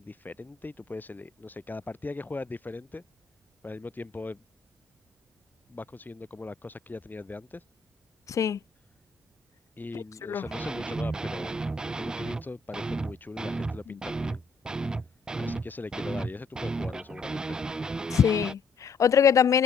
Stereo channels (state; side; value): quieter; right; 4.5 dB